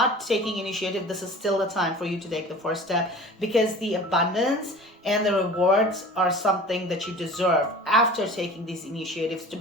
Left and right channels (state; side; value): normal; both; correlation 0.40